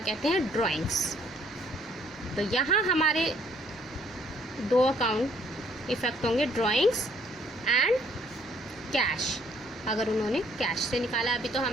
हैं, ड्राइंग्स। तो यहाँ हमारे 2 अकाउंट इफेक्ट होंगे, ड्राइंग्स एंड कैश। अगर उन्होंने कैश से निकाला, अभी तो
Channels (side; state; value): both; normal; correlation 0.64